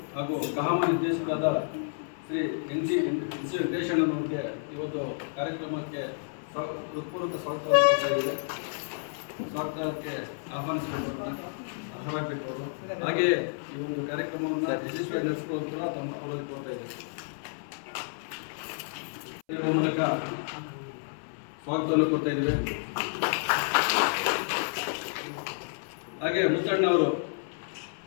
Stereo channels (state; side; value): silent; right; 58 dB below the other